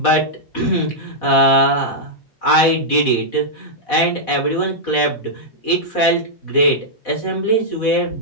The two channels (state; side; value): late; right; 4.1 ms